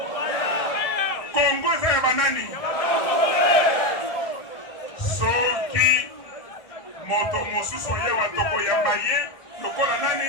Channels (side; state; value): right; late; 1.6 ms